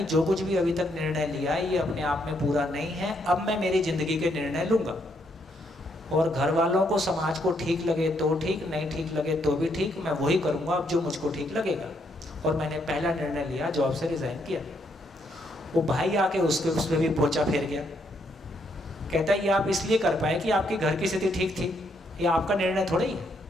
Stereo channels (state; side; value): normal; both; correlation 0.74